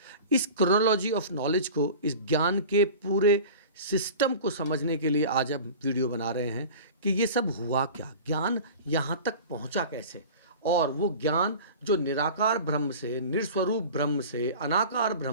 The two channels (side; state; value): both; inverted; correlation -0.37